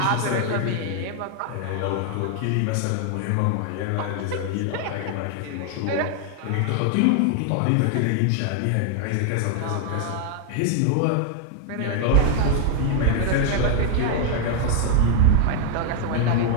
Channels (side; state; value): both; different; correlation 0.00